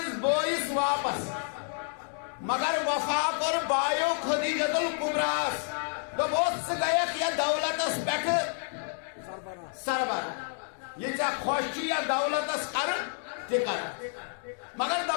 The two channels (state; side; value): silent; right; 57 dB below the other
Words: بوئس واپس مگر وفا کر بایو خدیجت الکبراس دبوس گیک یا دولت اس بیٹھ سربراہ یہ چاہ خوشی یا دولت اس کر تکر مگر